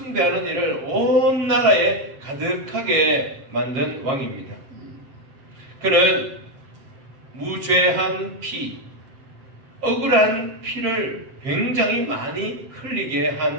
일을 온 나라에 가득하게 만든 왕입니다. 그는 무죄한 피, 억울한 피를 굉장히 많이 흘리게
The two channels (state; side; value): late; left; 7.4 ms